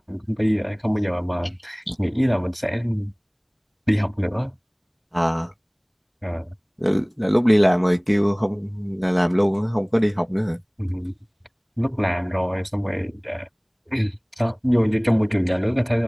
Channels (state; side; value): identical; both; correlation 1.00